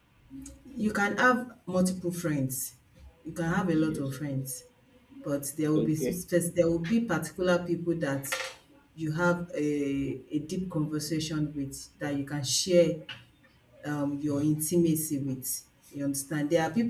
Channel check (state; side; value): identical; both; correlation 1.00